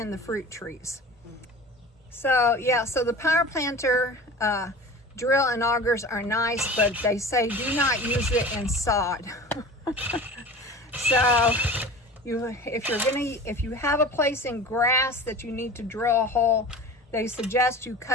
the fruit trees. So yeah, so the power planter drill and augers are nice, but they say do not use it in sod. So if you have a place in grass that you need to drill a hole, they suggest you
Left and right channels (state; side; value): normal; both; correlation 0.37